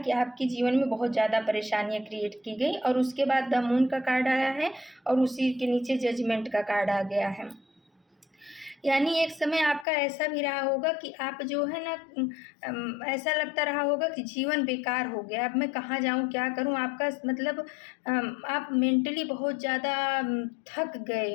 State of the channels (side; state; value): right; drops out; at 9.9 s